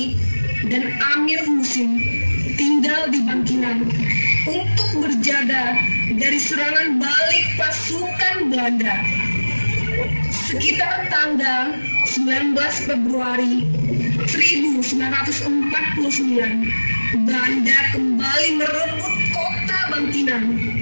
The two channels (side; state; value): both; inverted; correlation -1.00